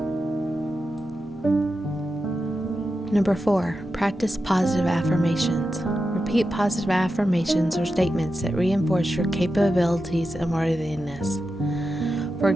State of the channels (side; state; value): both; normal; correlation 0.90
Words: 4. Practice positive affirmations. Repeat positive affirmations or statements that reinforce your capabilities and worthiness. For